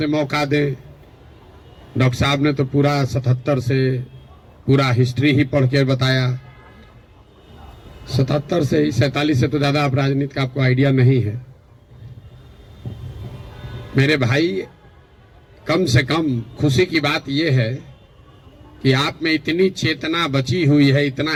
मौका दें। डॉक्टर साहब ने तो पूरा 77 से पूरा हिस्ट्री ही पढ़ के बताया। 77 से ही 47 से तो ज्यादा आप राजनीति का आपको आइडिया नहीं है। मेरे भाई, कम से कम खुशी की बात यह है कि आप में इतनी चेतना बची हुई है, इतना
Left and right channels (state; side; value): identical; both; correlation 1.00